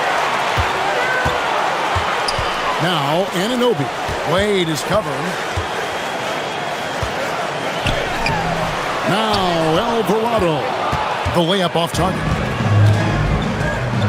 Now, Anunoby. Wade is covering. Now, Alvarado. The layup off target.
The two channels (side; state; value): both; identical; correlation 1.00